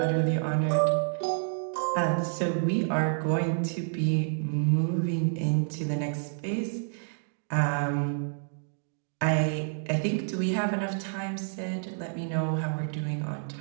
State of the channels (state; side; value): silent; left; digital silence